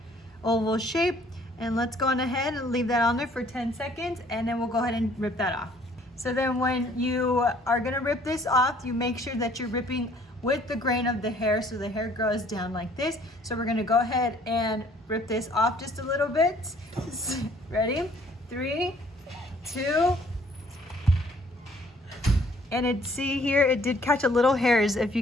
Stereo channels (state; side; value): normal; both; correlation 0.59